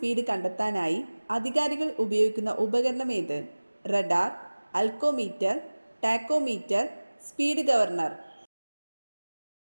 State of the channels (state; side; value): inverted; both; correlation -1.00